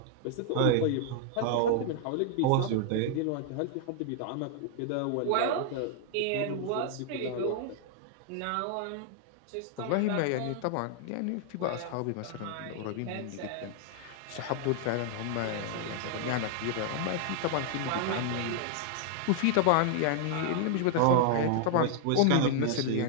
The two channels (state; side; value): different; both; correlation 0.00